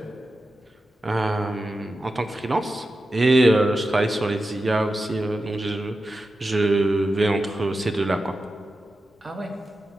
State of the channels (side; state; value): both; normal; correlation 0.91